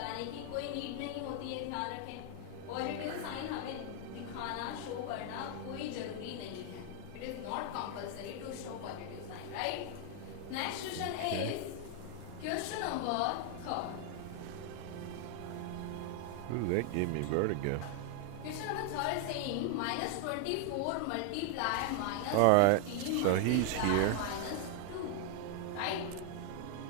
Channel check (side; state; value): both; different; correlation 0.00